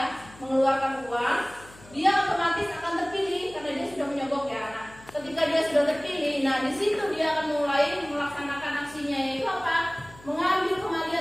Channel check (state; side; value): noise; left; hum, 22 dB below the sound